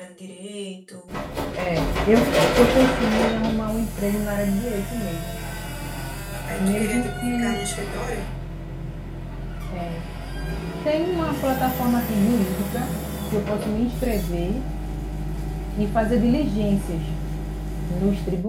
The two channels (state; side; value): identical; both; correlation 1.00